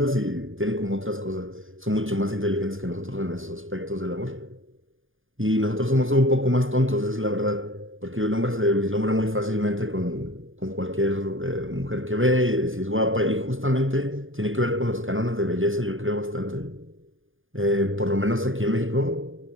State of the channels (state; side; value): late; left; 0.59 ms